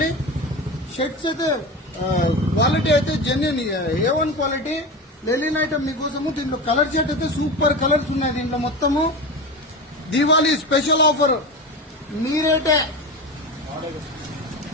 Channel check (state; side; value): normal; both; correlation 0.25